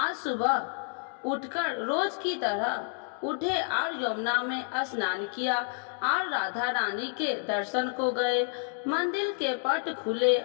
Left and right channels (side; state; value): right; silent; 55 dB below the other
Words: सुबह उठकर रोज की तरह उठे और यमुना में स्नान किया और राधा रानी के दर्शन को गए। मंदिर के पट खुले